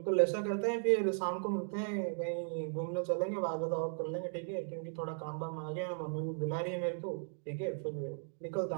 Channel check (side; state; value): left; silent; digital silence